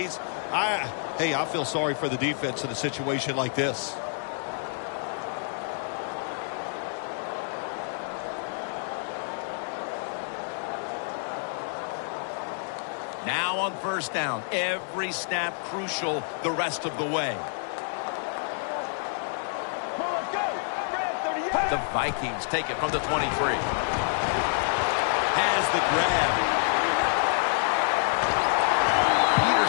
Hey, I feel sorry for the defense in a situation like this. Now on first down, every snap crucial the rest of the way. The Vikings take it from the 23. Has the grab.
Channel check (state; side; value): silent; right; digital silence